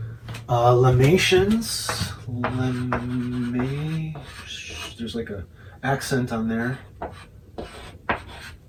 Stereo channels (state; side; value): identical; both; correlation 1.00